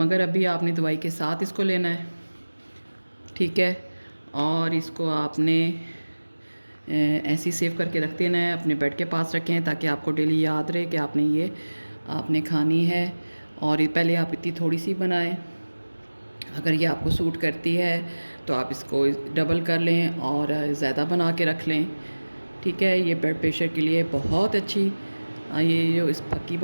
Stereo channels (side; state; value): both; inverted; correlation -1.00